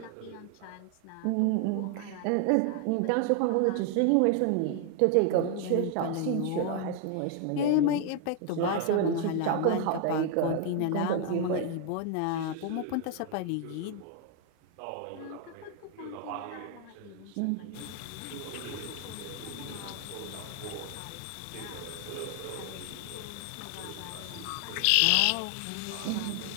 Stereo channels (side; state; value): both; different; correlation 0.00